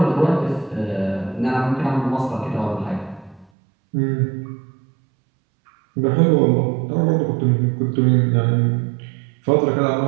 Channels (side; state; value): left; drops out; at 3.5 s